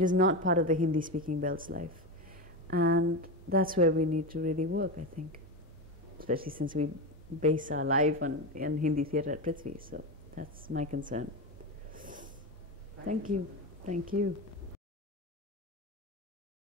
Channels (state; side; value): normal; both; correlation 0.17